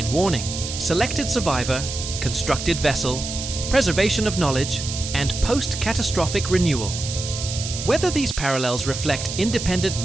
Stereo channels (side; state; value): right; noise; hiss, 7 dB below the sound